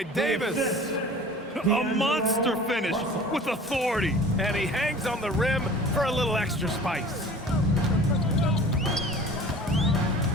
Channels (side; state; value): both; normal; correlation 0.43